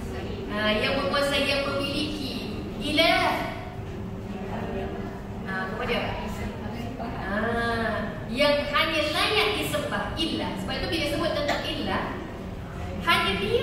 yang menguasai, yang memiliki. Ilah, apa dia? Yang hanya layak disembah. Ilah. Sebab itu bila sebut tentang ilah, hanya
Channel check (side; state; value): both; identical; correlation 1.00